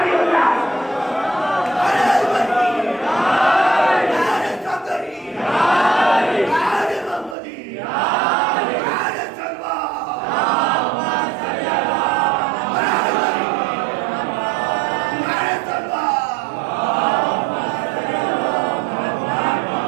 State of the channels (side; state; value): left; drops out; at 7.4 s